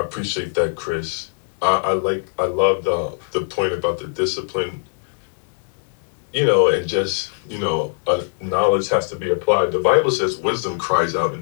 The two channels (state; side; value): silent; right; digital silence